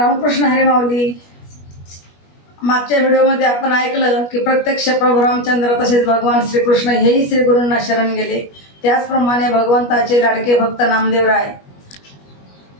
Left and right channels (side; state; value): right; late; 21 ms